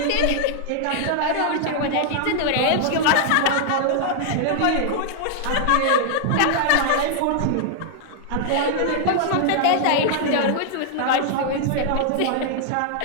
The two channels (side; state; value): both; different; correlation 0.00